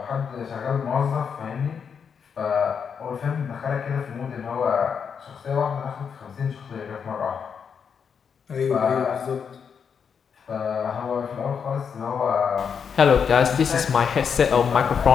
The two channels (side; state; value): right; quieter; 6.7 dB